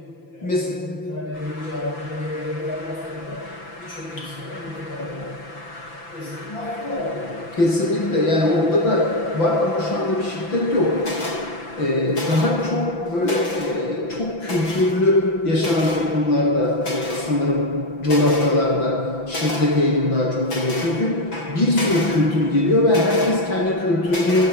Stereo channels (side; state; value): right; late; 5.9 ms